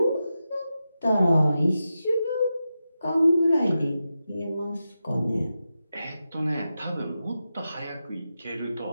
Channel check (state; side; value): inverted; both; correlation -0.90